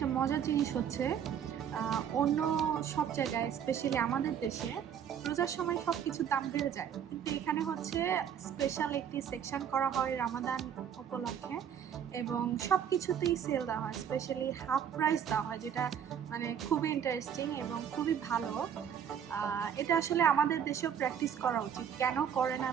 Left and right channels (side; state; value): left; quieter; 8.6 dB